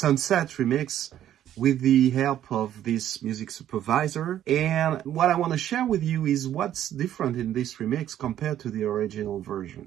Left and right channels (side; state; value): left; quieter; 11.4 dB